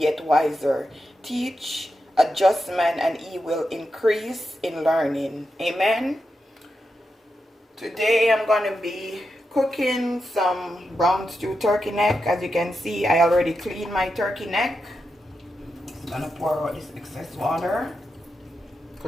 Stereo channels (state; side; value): normal; both; correlation 0.88